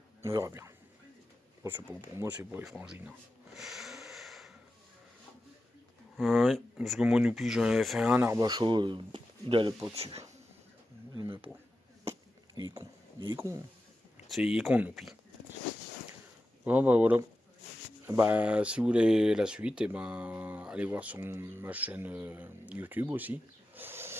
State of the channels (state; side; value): normal; both; correlation 0.92